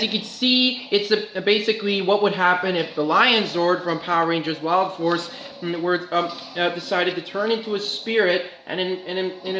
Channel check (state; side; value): identical; both; correlation 1.00